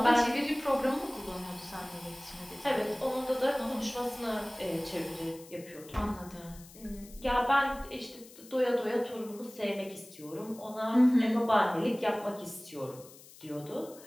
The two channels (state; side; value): noise; left; hiss, 20 dB below the sound